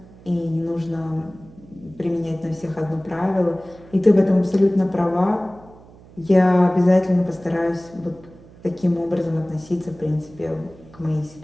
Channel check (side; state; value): right; noise; hum, 23 dB below the sound